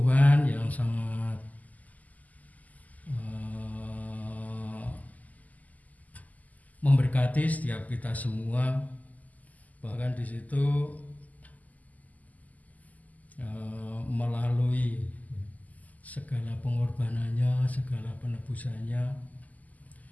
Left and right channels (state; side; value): late; right; 0.078 ms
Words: yang sangat memberkati setiap kita semua. Bahkan di situ melalui segala pengorbanannya, segala penebusannya,